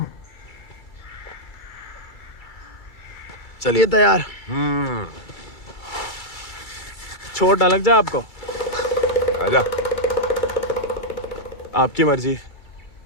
चलिए तैयार। चोट ना लग जाए आपको। आजा। आपकी मर्जी।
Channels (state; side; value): late; right; 2.3 ms